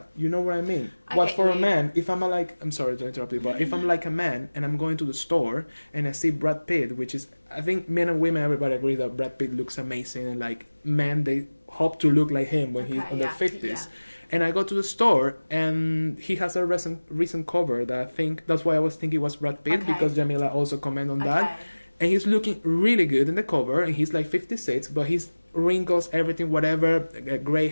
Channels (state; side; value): inverted; both; correlation -1.00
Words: You know what I mean? But for a man, if I'm I'm sorry to interrupt you, but if I'm like a man and I'm going to the store and I see Brad Pitt, which is, I think men and women, everybody agrees that Brad Pitt looks amazing, and like men, they hope to look like him when he's in their 50s. And I go to the store and he has a recent cover that I think, that's why I was thinking it was Brad Pitt because Jamila also commented on that. And he's looking really good in the cover and he's like 56, but he's wrinkles, everything, whatever, gray